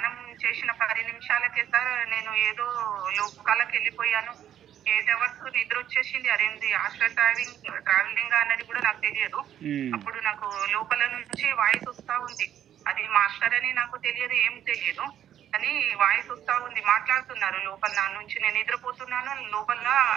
చేసిన 10 నిమిషాలకే సార్ నేను ఏదో లోకాలకు వెళ్ళిపోయాను. 8 hours నిద్ర వచ్చేసింది. అదేంటి హాస్టల్ ట్రావెలింగ్ అన్నది కూడా నాకు తెలియదు. అప్పుడు నాకు లోపల నుంచి వాయిస్ వస్తా ఉంది. అది మాస్టర్ అని నాకు తెలియదు, ఏం తెలియదు, అని వాయిస్ వస్తా ఉంది. మాట్లాడుతున్నారు లోపల నా నుంచి. నేను నిద్రపోతున్నాను, లోపల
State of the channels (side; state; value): left; quieter; 10.5 dB